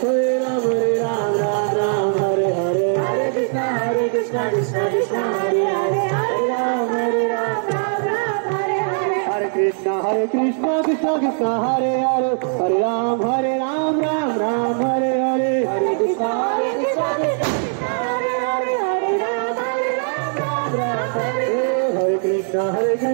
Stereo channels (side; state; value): left; silent; 66 dB below the other